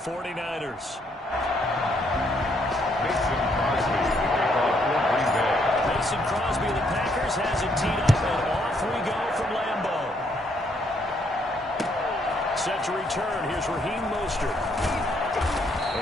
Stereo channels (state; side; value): normal; both; correlation 0.71